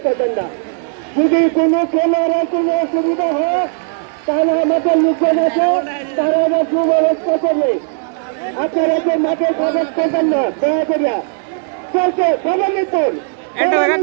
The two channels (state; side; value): silent; left; digital silence